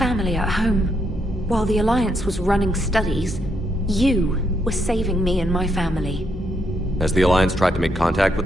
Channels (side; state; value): both; normal; correlation 0.77